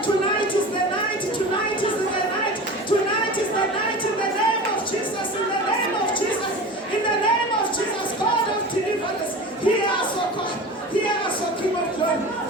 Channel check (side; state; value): both; normal; correlation 0.33